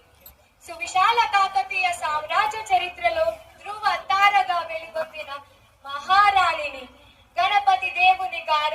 సువిశాల కాకతీయ సామ్రాజ్య చరిత్రలో ధ్రువ తారగా వెలుగొందిన మహారాణిని, గణపతి దేవుని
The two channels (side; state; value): both; identical; correlation 1.00